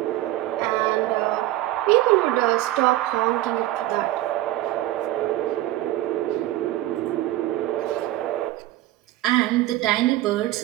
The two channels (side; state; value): left; quieter; 15.7 dB